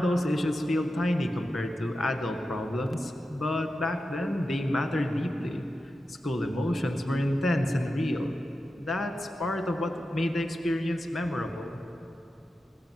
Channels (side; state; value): both; normal; correlation 0.91